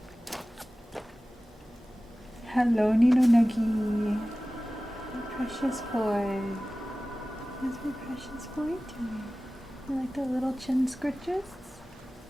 Hello, Nino Nuggy. My precious boy. How's my precious boy doing? You like the little chin scritches?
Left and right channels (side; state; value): both; normal; correlation 0.97